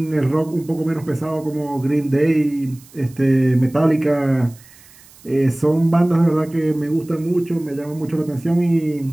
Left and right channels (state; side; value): noise; right; hiss, 25 dB below the sound